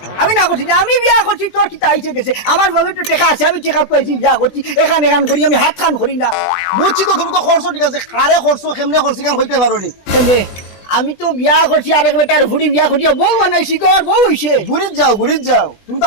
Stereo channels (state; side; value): late; right; 20 ms